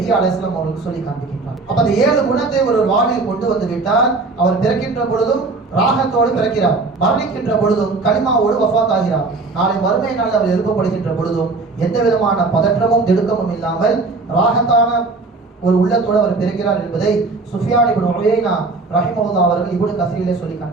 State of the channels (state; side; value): quieter; left; 3.7 dB